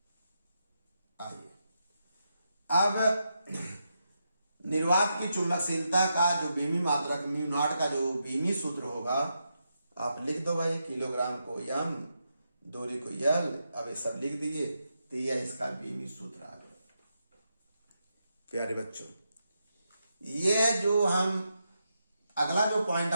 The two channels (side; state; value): both; inverted; correlation -0.84